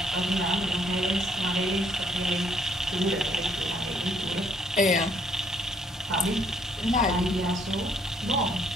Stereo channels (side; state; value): both; normal; correlation 0.67